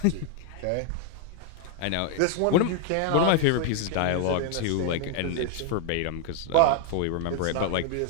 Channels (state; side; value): different; both; correlation 0.00